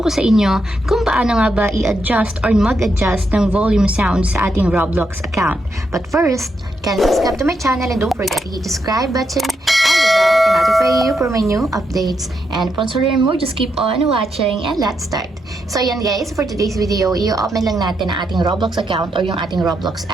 ko sa inyo kung paano nga ba i-adjust or mag-adjust ng volume sound sa ating Roblox account. But first, kindly subscribe to my channel and don't forget to hit the subscribe button and the bell to notify you for my new updates. And once you learn more, just keep on watching and let's start. So yan guys, for today's video, i-open lang natin ang ating Roblox account or yung ating Roblox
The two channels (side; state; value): both; normal; correlation 0.81